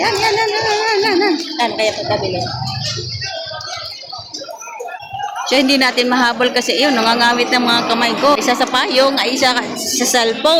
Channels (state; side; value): identical; both; correlation 1.00